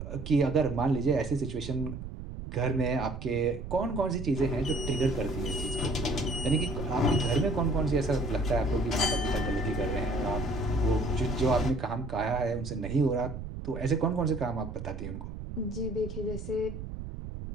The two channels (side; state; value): right; noise; rumble, 9 dB below the sound